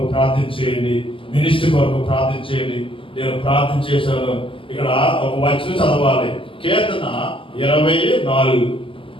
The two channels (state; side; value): late; right; 0.25 ms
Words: ప్రార్థించేయండి, మినిస్ట్రీ కొరకు ప్రార్థించేయండి. నేను ప్రార్థన చేశాను. ఇక్కడ ఒక వచనం చదవాలి, కీర్తన 24.